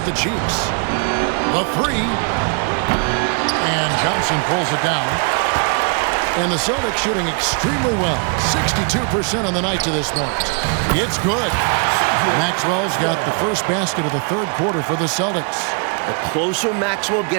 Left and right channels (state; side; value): quieter; left; 38.3 dB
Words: to Cheeks. The 3. And Johnson pulls it down. And the Celtics shooting extremely well. 62% on the night to this point. It's good. Maxwell's got the first basket of the third quarter for the Celtics. The closer Maxwell